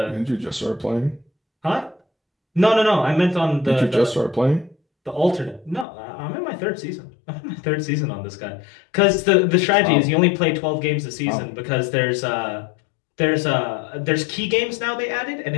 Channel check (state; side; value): drops out; right; at 5.9 s